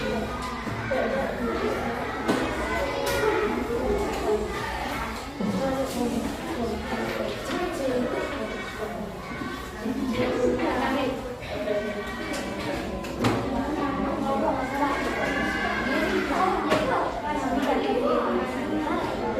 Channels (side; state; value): both; identical; correlation 1.00